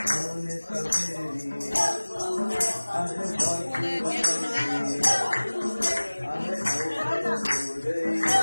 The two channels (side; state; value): both; inverted; correlation -1.00